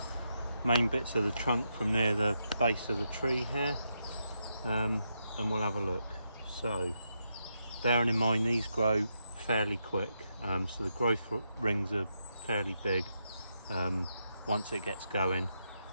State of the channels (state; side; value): inverted; both; correlation -0.83